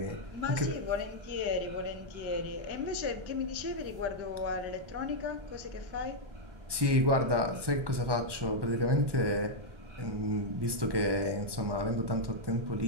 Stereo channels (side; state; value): left; late; 1.2 ms